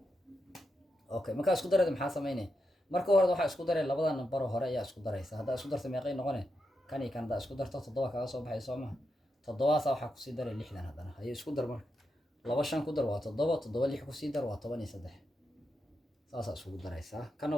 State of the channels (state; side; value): normal; both; correlation 0.85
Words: okay marka isku darada maxaa sameynay marka hore waxa isku daray labada nambar hore ayaa isku daraysa hadda isku dartay meeqay noqonay kan iyo kan da isku darto 7 kaga soo baxay Soomaa 7 waxa ku sii daray 6 hadana ay isku dar marka 2 5 ku dar waa 7 7 6 ku sii dar waa 13 saasa isku daraysa kana